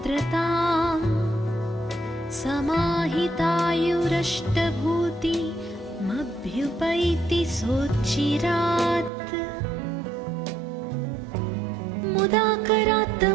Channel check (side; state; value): left; drops out; at 9.1 s